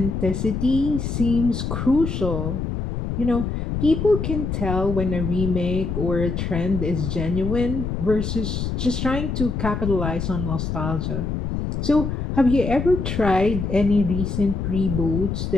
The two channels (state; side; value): noise; left; rumble, 3 dB below the sound